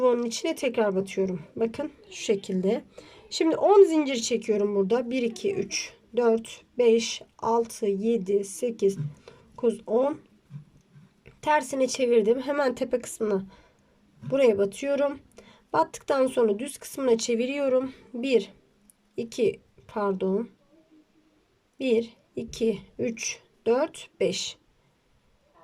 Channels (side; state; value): both; identical; correlation 1.00